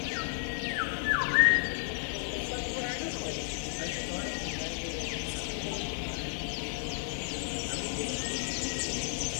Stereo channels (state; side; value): silent; right; digital silence